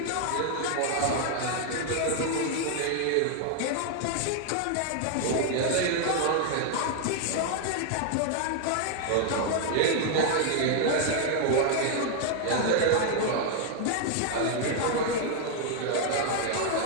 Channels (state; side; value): different; both; correlation 0.00